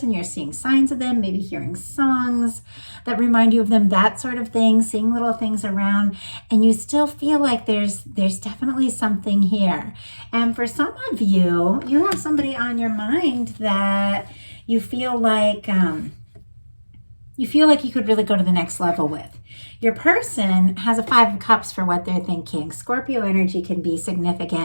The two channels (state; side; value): inverted; both; correlation -1.00